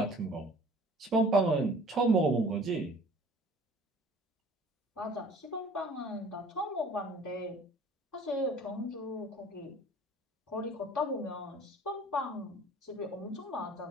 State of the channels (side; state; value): both; normal; correlation 0.49